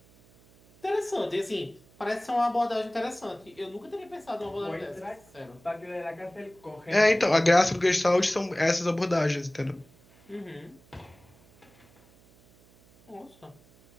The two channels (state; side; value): noise; right; hum, 28 dB below the sound